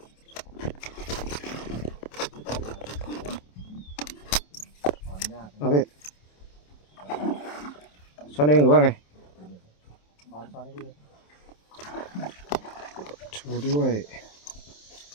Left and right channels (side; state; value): right; late; 27 ms